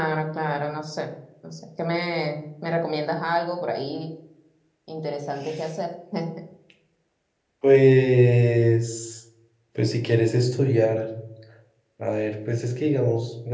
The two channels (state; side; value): identical; both; correlation 1.00